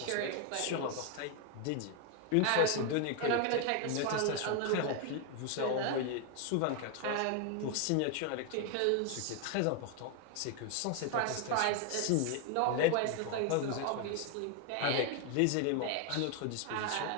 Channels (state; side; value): different; both; correlation 0.01